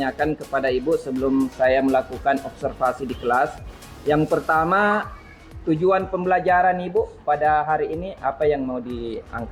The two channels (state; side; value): identical; both; correlation 1.00